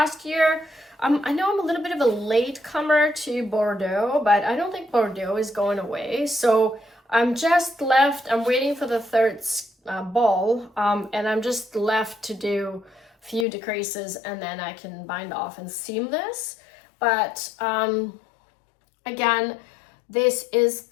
year, I know I'm a little bit of a late comer to Bordeaux, but I don't think Bordeaux is going away. So I'm waiting for the third ball, and I'm just left to do a few decreases, and then I can bind off and seam this. But again, this is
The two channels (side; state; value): right; drops out; at 13.5 s